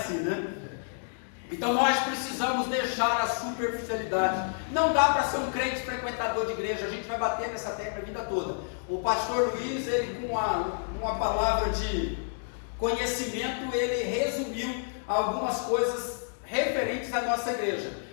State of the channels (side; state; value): right; silent; digital silence